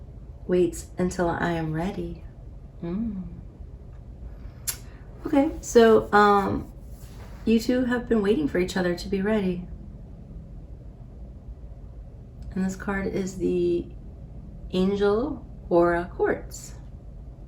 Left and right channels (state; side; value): identical; both; correlation 1.00